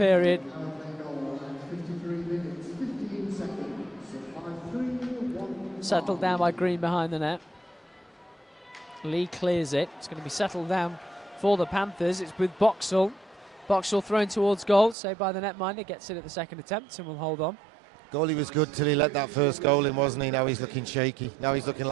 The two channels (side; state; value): left; drops out; at 15.0 s